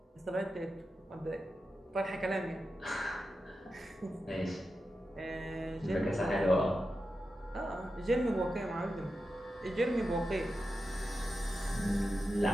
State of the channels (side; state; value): both; normal; correlation 0.90